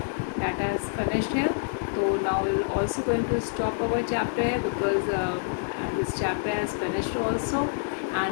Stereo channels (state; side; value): silent; right; 60 dB below the other